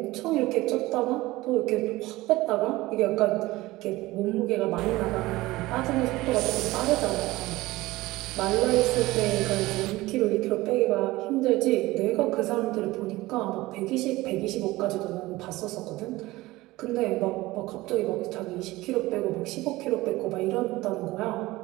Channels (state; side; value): quieter; left; 19.0 dB